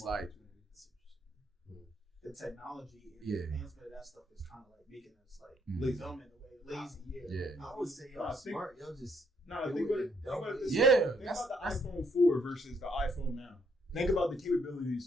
like the technology and the advancement of that stuff is kind of like making us like dumb in a way, lazy. Yeah. I would say y'all smart. Y'all just think about this. Yeah. Think about the iPhone 4 versus the iPhone now. Think about the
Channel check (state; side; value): normal; both; correlation 0.71